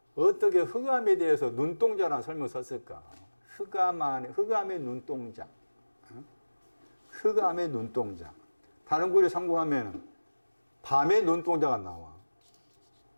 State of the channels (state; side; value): inverted; both; correlation -1.00